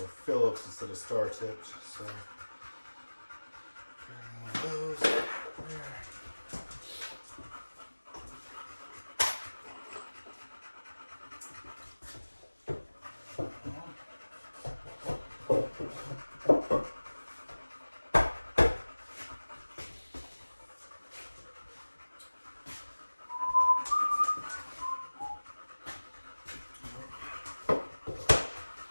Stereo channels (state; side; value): inverted; both; correlation -1.00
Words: Phillips instead of star tipped, so one of those there.